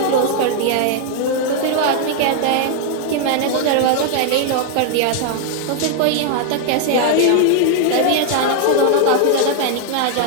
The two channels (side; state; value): both; different; correlation 0.00